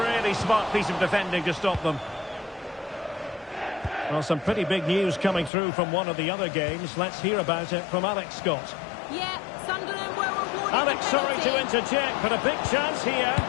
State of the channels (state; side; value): drops out; right; at 5.5 s